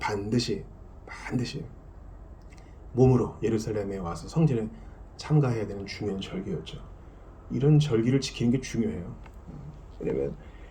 몸으로 예루살렘에 와서 성전에 참가해야 되는 중요한 절기였죠. 이런 절기를 지키는 게 중요해요. 왜냐면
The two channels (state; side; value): identical; both; correlation 1.00